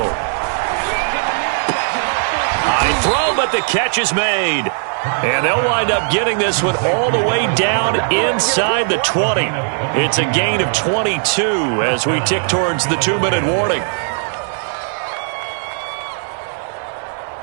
High throw, but the catch is made. And they'll wind up getting this one all the way down inside the 20. It's a gain of 22 as we tick towards the 2-minute warning.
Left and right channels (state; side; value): silent; left; 61 dB below the other